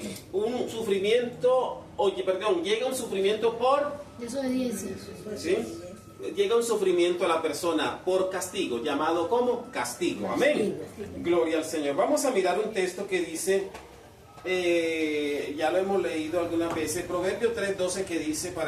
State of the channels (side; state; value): both; identical; correlation 1.00